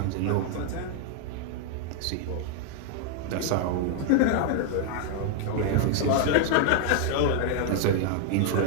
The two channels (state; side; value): different; both; correlation 0.00